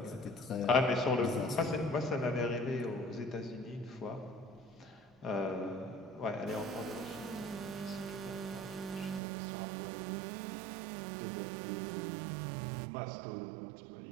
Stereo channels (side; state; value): left; drops out; at 9.2 s